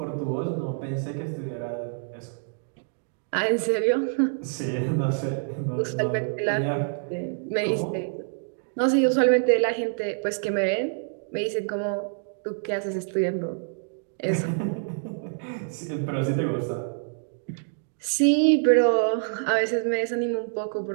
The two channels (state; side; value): silent; left; digital silence